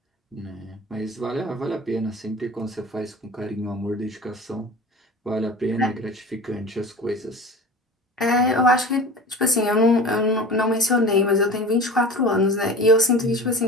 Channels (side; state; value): both; normal; correlation 0.36